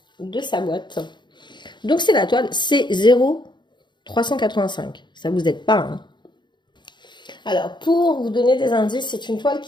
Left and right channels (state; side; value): late; right; 0.22 ms